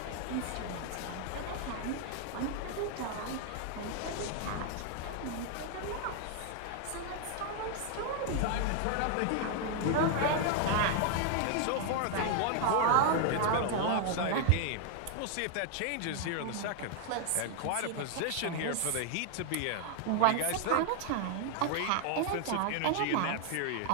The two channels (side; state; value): both; different; correlation 0.00